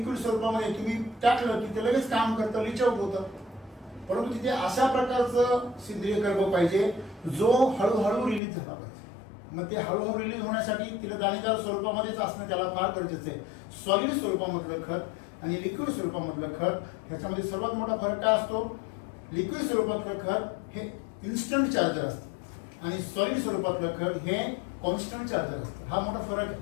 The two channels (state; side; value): drops out; right; at 8.4 s